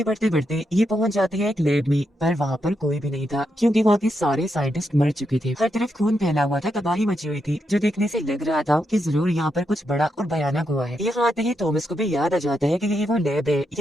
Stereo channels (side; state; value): both; normal; correlation 0.83